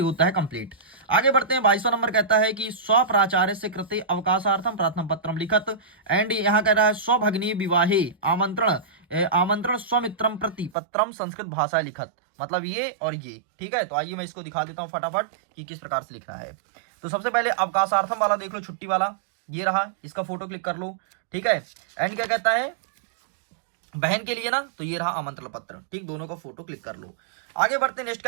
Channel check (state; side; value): drops out; left; at 10.7 s